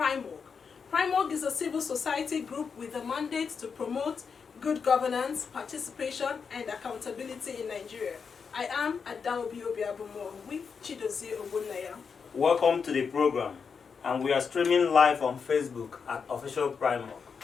PRIMOG is a civil society group with a mandate to promote good governance, participation and accountability in Nigeria. I am Adaobi Obiabumo with Chidozie Ogbonnaya. Welcome to the program, and we are streaming live on Facebook at Official PRIMOG.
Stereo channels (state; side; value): quieter; right; 5.9 dB